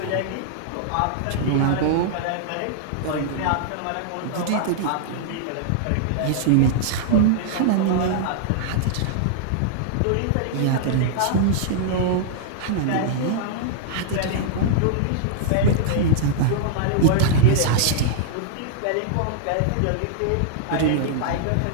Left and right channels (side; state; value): both; different; correlation -0.01